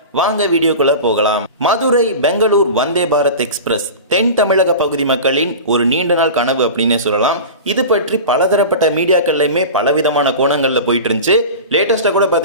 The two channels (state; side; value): inverted; both; correlation -0.31